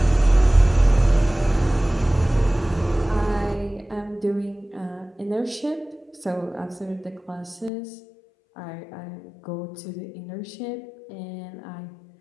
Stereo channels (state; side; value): drops out; right; at 7.7 s